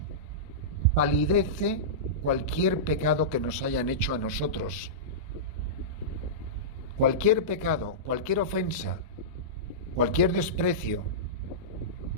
palidece cualquier pecado que nos hayan hecho a nosotros. Cualquier pecado, cualquier ofensa, cualquier desprecio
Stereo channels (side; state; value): both; normal; correlation -0.17